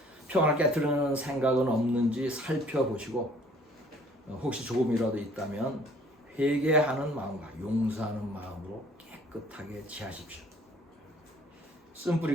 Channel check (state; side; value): normal; both; correlation 0.56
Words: 평안을 깨트리는 생각은 없는지 살펴보시고 혹시 조금이라도 있다면 회개하는 마음과 용서하는 마음으로 깨끗하게 지하십시오.